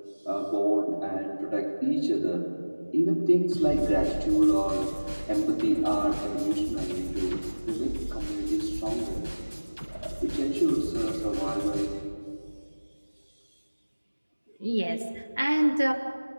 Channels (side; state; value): both; inverted; correlation -1.00